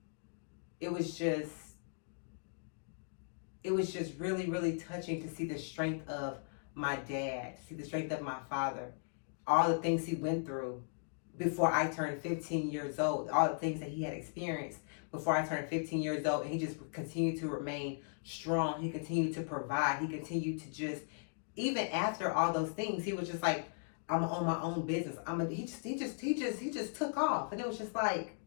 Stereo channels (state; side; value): silent; right; digital silence